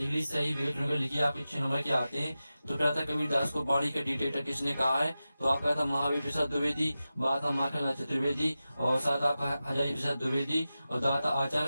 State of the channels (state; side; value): inverted; both; correlation -0.94